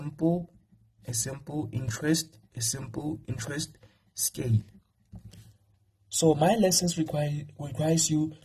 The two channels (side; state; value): both; identical; correlation 1.00